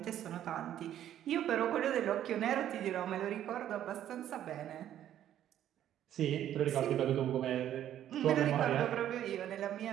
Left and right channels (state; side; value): quieter; left; 11.3 dB